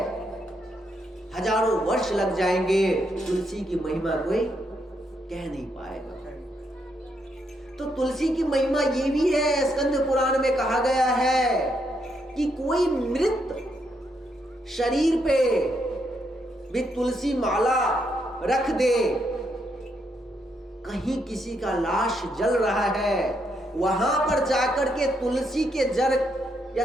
हजारों वर्ष लग जाएंगे, तुलसी की महिमा कोई कह नहीं पाएगा। तो तुलसी की महिमा ये भी है, स्कंद पुराण में कहा गया है कि कोई मृत शरीर पे भी तुलसी माला रख दे, कहीं किसी का लाश जल रहा है, वहां पर जाकर के तुलसी के जड़ या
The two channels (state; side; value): normal; both; correlation 0.77